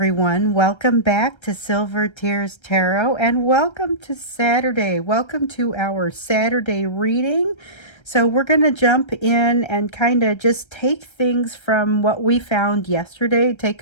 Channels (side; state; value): right; late; 1.3 ms